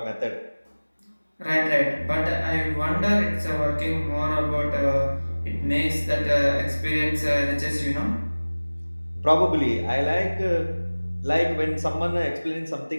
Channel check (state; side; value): inverted; both; correlation -1.00